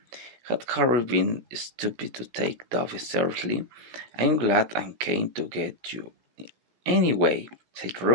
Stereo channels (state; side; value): late; left; 17 ms